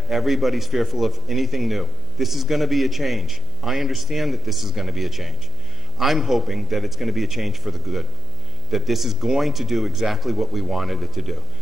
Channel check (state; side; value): noise; left; hum, 13 dB below the sound